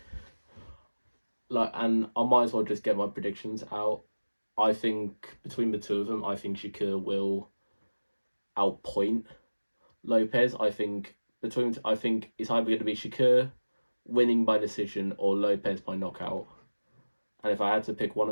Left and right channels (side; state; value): both; inverted; correlation -1.00